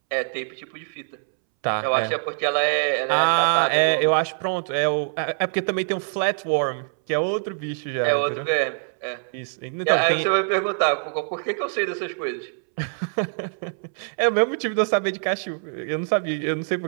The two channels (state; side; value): silent; left; 63 dB below the other